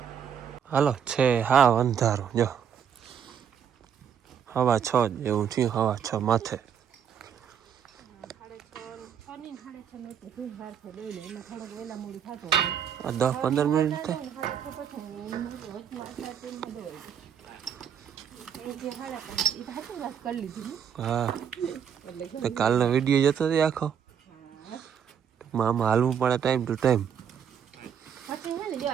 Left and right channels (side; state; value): left; quieter; 8.2 dB